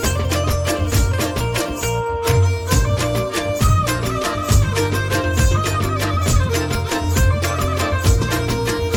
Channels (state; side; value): identical; both; correlation 1.00